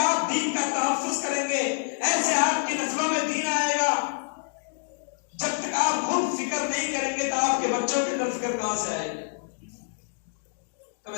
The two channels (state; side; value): silent; right; digital silence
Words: دین کا تحفظ کریں گے، ایسے آپ کی نسلوں میں دین آئے گا۔ جب تک آپ خود فکر نہیں کریں گے تو آپ کے بچوں کے اندر فکر کہاں سے آئے گی؟ تو